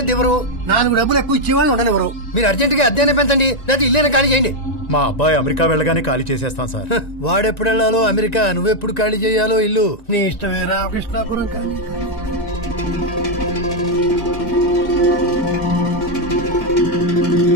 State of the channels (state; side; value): late; right; 1.9 ms